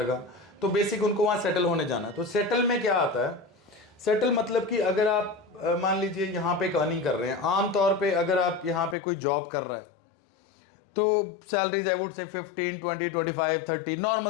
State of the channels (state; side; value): drops out; right; at 9.0 s